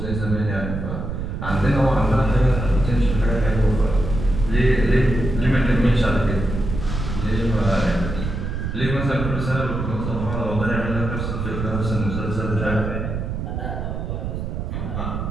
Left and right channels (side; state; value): right; noise; rumble, 4 dB below the sound